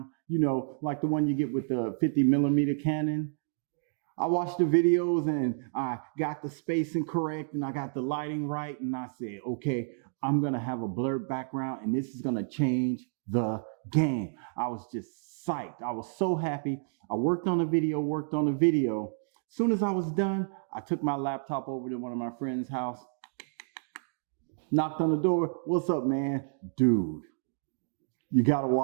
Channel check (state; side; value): silent; left; digital silence